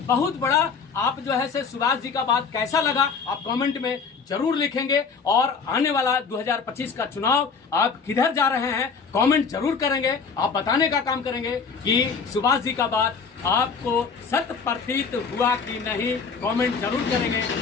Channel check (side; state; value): right; quieter; 5.4 dB